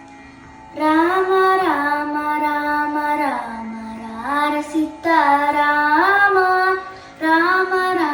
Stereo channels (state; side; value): identical; both; correlation 1.00